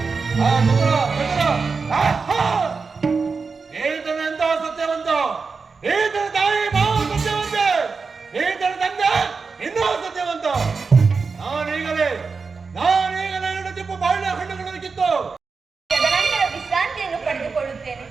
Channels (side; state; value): left; quieter; 4.8 dB